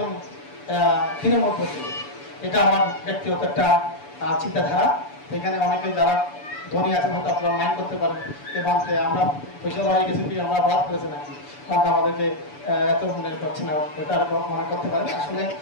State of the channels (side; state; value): right; late; 7.0 ms